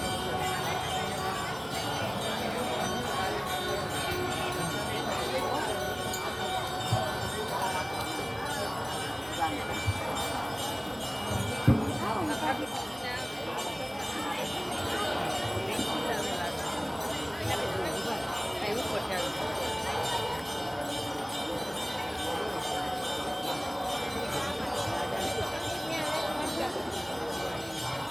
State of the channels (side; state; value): both; identical; correlation 1.00